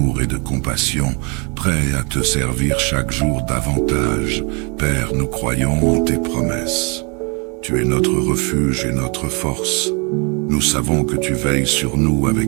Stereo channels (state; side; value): quieter; left; 33.2 dB